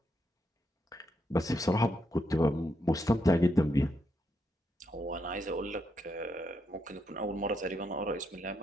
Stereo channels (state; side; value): normal; both; correlation 0.79